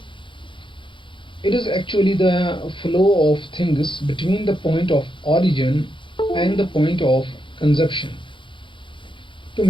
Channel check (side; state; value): right; late; 0.24 ms